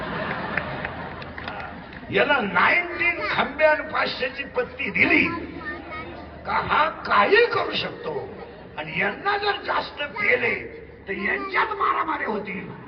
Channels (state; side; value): identical; both; correlation 1.00